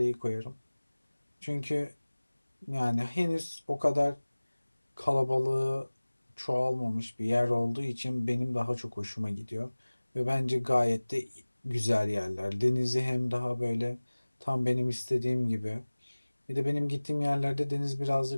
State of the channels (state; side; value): inverted; both; correlation -1.00